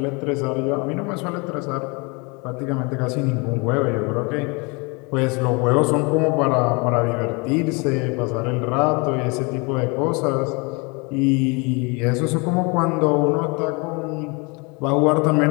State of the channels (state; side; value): quieter; right; 29.7 dB